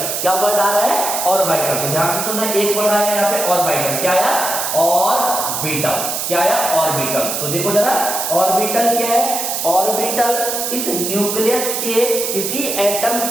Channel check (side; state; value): right; noise; hiss, 2 dB below the sound